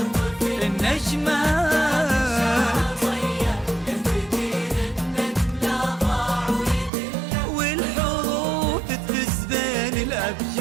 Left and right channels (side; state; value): left; drops out; at 6.9 s